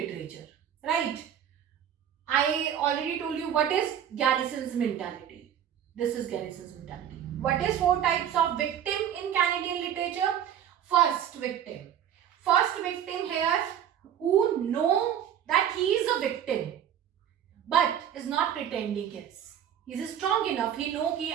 right? I already told you what is Garrison's mentality. This is Garrison's mentality. What is 4 types of victim in Canadian literature? First victim here who know that he is a victim but is not pretending yes. He is strong enough. He know कि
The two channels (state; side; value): quieter; left; 9.7 dB